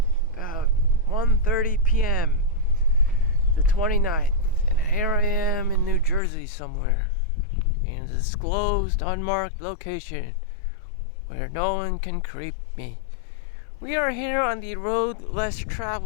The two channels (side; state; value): right; drops out; at 6.2 s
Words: about 1:30 p.m., the 29th, and here I am in New Jersey somewhere, in a disclosed, unmarked location, where no one can creep me. We are here on the road less